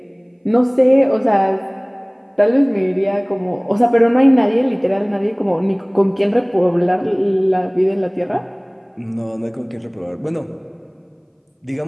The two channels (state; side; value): identical; both; correlation 1.00